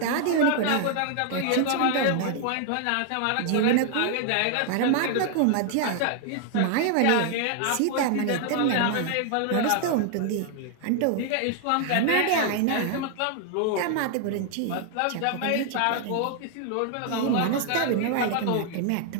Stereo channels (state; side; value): different; both; correlation 0.00